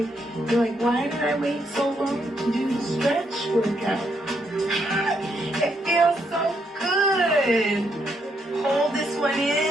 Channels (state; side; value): normal; both; correlation 0.76